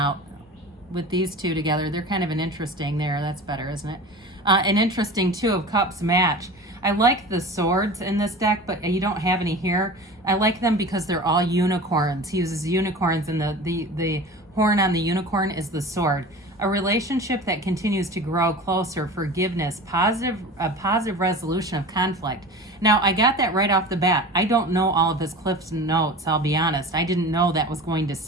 with these two together. They're kind of an interesting there. That's better, isn't it? An interesting Two of Cups match. I like the swords in this deck, but you don't have any here. I like them because they're all unicorns. He uses unicorns, and the horn on the unicorn is the sword. A relationship that continues to grow closer, forgiveness, a positive resolution of conflict. Now, I got that right off the bat. I don't know all of his Cliff's notes, I'll be honest. I didn't know that was going to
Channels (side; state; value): both; normal; correlation 0.35